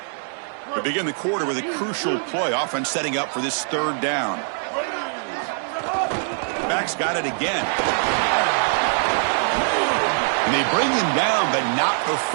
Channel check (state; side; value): silent; left; 64 dB below the other